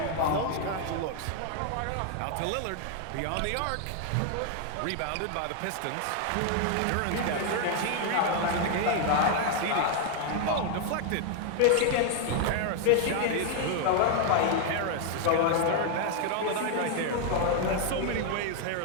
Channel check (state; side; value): different; both; correlation 0.00